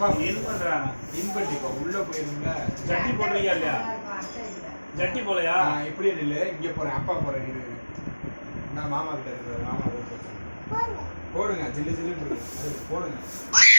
என்ன பண்றாங்க? இன் பண்ணிப்போம். உள்ள போயிருங்க. ஜட்டி போடுறீங்க இல்லையா? ஜட்டி போலையா? இப்படியே நில்லு. இங்க போறேன். அப்பா போறேன். இரு. நான் மாமா கிட்ட இருக்கேன். மாமா போடுங்க. ஜில்லு ஜில்லு போடுங்க.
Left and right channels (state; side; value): inverted; both; correlation -1.00